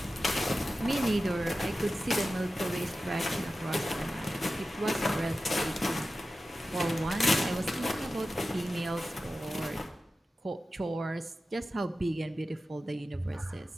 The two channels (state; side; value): normal; both; correlation 0.94